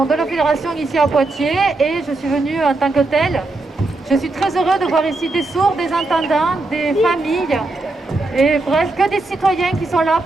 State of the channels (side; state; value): left; quieter; 3.1 dB